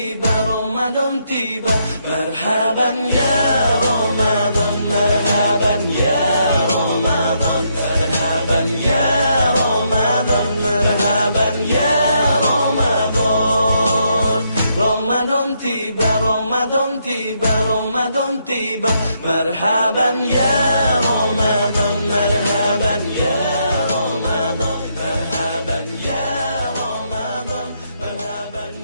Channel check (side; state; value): both; inverted; correlation -0.76